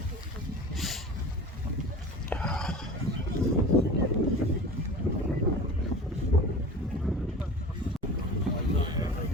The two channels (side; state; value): both; normal; correlation 0.36